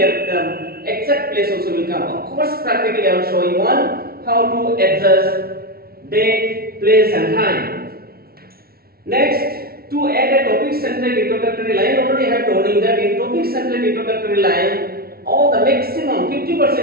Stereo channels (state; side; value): late; left; 0.44 ms